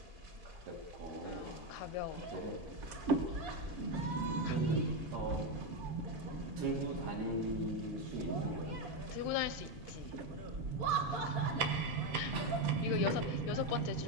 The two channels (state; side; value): normal; both; correlation 0.09